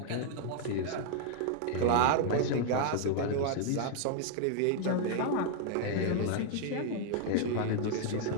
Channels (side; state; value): both; different; correlation 0.00